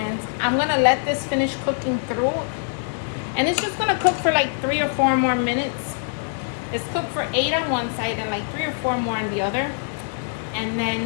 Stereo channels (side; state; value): right; silent; digital silence